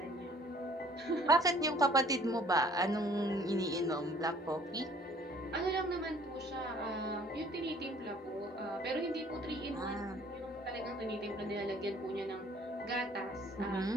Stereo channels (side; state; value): both; normal; correlation 0.56